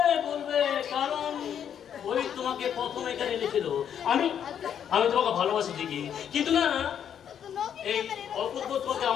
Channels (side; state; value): right; quieter; 8.9 dB